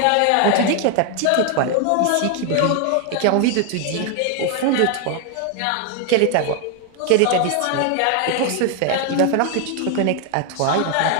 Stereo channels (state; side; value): different; both; correlation 0.01